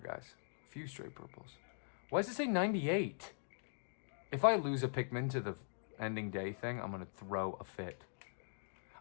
A few stray purples. Why does it say 98? If I lose a Pikmin to the ending day thing, I'm going to throw a fit.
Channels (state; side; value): silent; right; digital silence